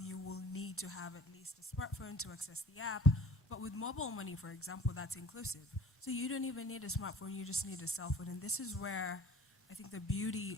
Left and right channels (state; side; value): normal; both; correlation 0.45